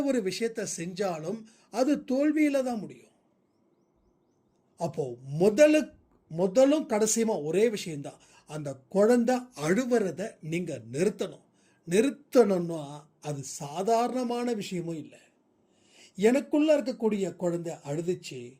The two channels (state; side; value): identical; both; correlation 1.00